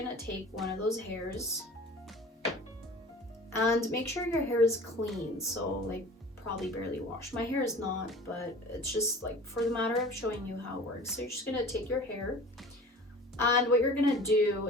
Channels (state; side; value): normal; both; correlation 0.42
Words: take one of those hairs and make sure your hair is clean. So like probably barely washed. My hair is not, but it's just like for the matter of showing you how it works. So you're just gonna take your hair, and what you're gonna do